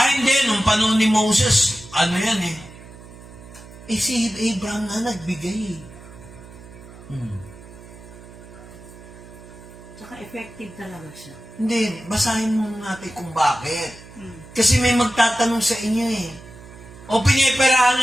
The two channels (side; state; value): right; noise; hum, 18 dB below the sound